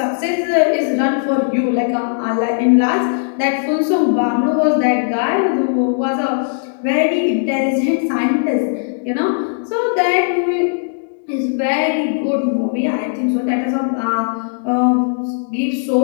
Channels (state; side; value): silent; right; digital silence